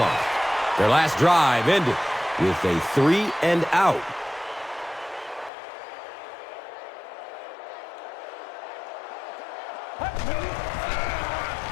Their last drive ended with a 3 and out.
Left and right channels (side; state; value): right; drops out; at 5.5 s